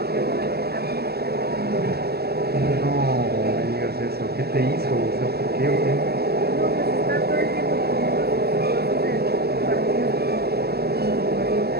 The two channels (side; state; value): left; late; 0.46 ms